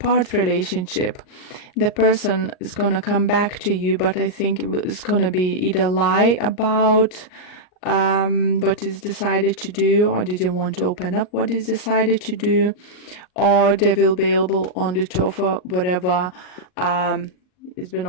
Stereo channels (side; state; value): right; late; 39 ms